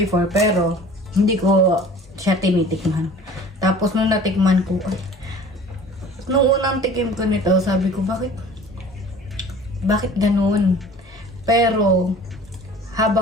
pero hindi ko siya tinitikman. Tapos nung natikman ko, nung unang tikim ko nito, sabi ko, bakit ganun? Pero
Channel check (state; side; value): normal; both; correlation 0.46